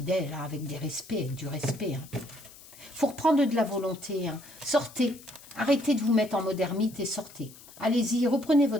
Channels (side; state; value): left; noise; hiss, 20 dB below the sound